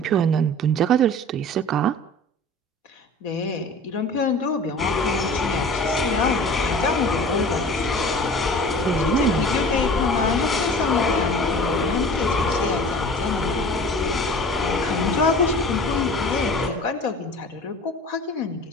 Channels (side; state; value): both; normal; correlation 0.41